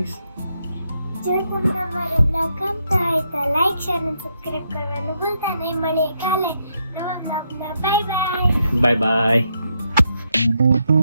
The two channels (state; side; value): inverted; both; correlation -0.79